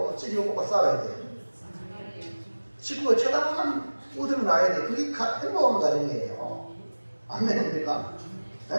찌개고 볶아 싸워야 돼요. 식구가 쳐다보면 웃음이 나야 돼. 그게 행복한 가정이에요. 아멘입니까?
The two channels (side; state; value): both; inverted; correlation -1.00